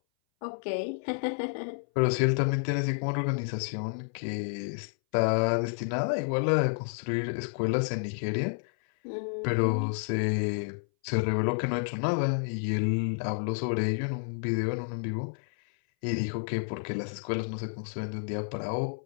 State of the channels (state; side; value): silent; right; 58 dB below the other